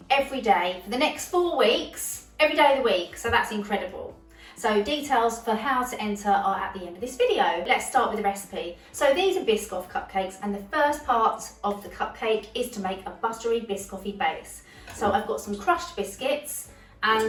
every day for the next 4 weeks, every day of the week. So that's incredible. So details for how to enter are at the end of this video. Let's start with the recipe. So these are Biscoff cupcakes, and the first part of the cupcake is to make a buttery Biscoffy base. So I've got some crushed biscuits,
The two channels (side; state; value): both; identical; correlation 1.00